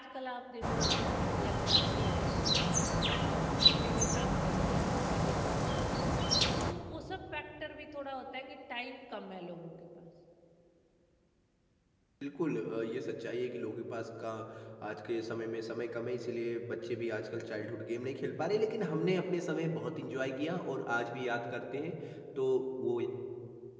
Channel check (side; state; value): both; identical; correlation 1.00